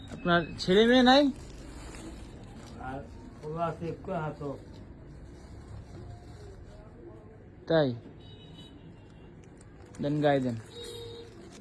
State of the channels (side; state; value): both; identical; correlation 1.00